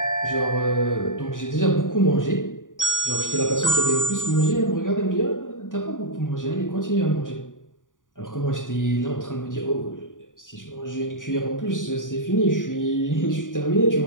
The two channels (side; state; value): right; late; 0.88 ms